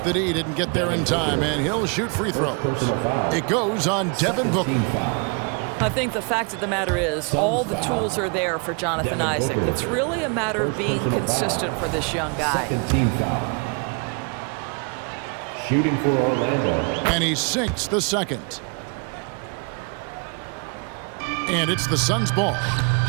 the D didn't get there in time, and he'll shoot free throws. It goes on Devin Booker. I think the fact of the matter is all the tools are there for Jonathan Isaac. It's really a matter of being consistent for this young guy. Second team foul. Shooting for Orlando. And he sinks the second. And it's the Suns' ball.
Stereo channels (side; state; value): left; quieter; 35.6 dB